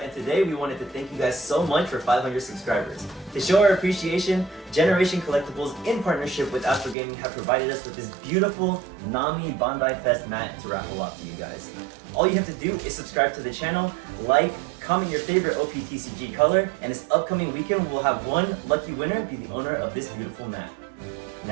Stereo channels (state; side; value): drops out; left; at 7.0 s